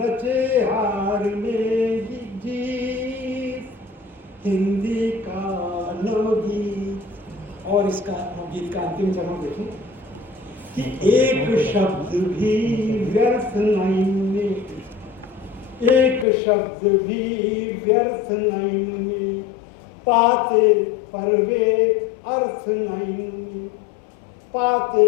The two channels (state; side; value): drops out; right; at 16.2 s